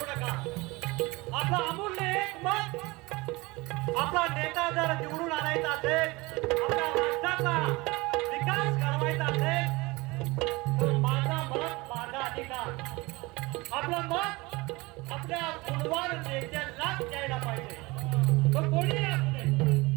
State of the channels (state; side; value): quieter; left; 23.1 dB